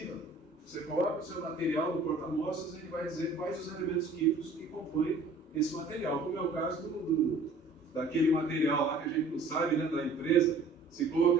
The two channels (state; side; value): quieter; left; 3.5 dB